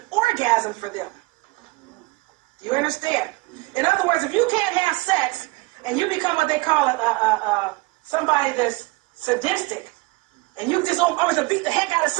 orgasm for them. Do you understand? In other words, if you can't have sex and you become what they call somebody that's sadistic, and you just always to beat the heck out of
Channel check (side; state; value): left; quieter; 24.0 dB